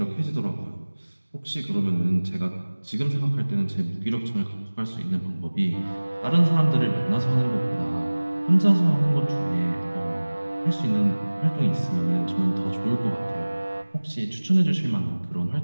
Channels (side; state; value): both; inverted; correlation -1.00